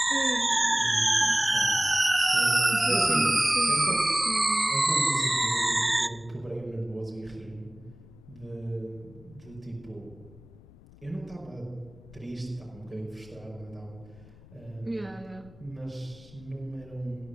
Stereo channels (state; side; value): noise; left; rumble, 22 dB below the sound